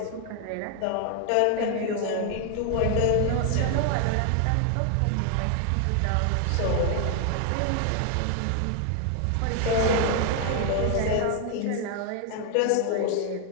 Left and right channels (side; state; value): both; different; correlation 0.00